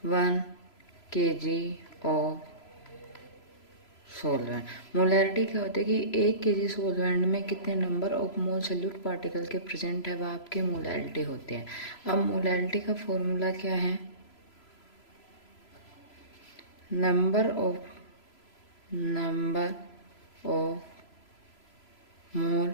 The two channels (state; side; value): late; right; 3.0 ms